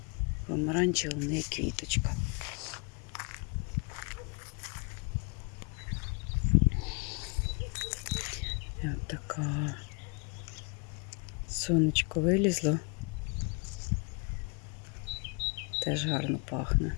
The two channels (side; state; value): right; quieter; 34.7 dB